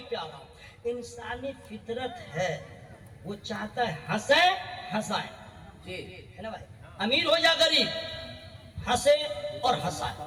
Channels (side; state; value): both; identical; correlation 1.00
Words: پہ آ رہا ہوں. انسانی فطرت ہے, وہ چاہتا ہے ہنسے ہنسائیں, جی ہے نا بھائی, امیر ہو یا غریب, ہنسے اور ہنسائیں.